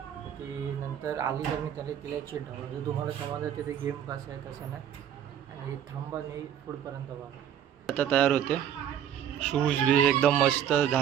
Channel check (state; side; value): quieter; left; 9.8 dB